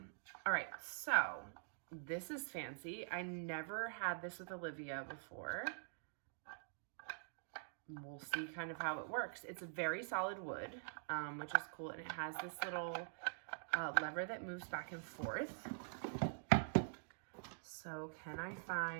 right, so this is fancy. I never had this with Olivia before. We'll see kind of how it works. It's a very solid wood, which is cool, and it has this little lever that moves back and forth. So can I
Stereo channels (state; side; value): silent; left; digital silence